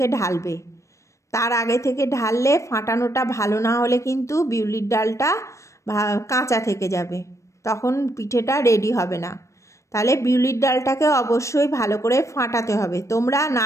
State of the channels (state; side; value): late; right; 0.15 ms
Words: ঢালবে। তার আগে থেকে ঢাললে ফাটানোটা ভালো না হলে কিন্তু বিউলির ডালটা কাঁচা থেকে যাবে, তখন পিঠেটা রেডি হবে না। তাহলে বিউলির ডালটাকে অবশ্যই ভালো করে ফাটাতে হবে। তোমরা